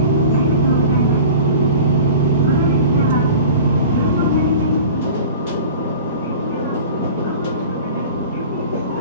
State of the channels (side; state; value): both; inverted; correlation -0.39